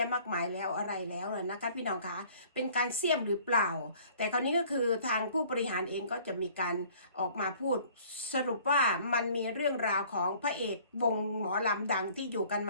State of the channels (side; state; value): both; inverted; correlation -0.54